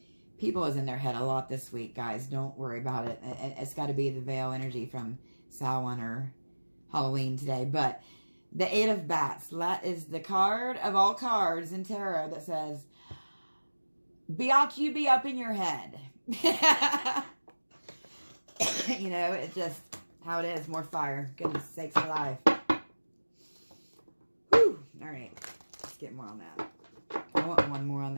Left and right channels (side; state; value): both; inverted; correlation -1.00